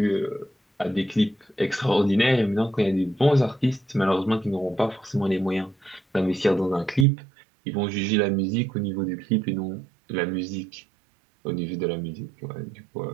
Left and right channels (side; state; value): left; drops out; at 7.1 s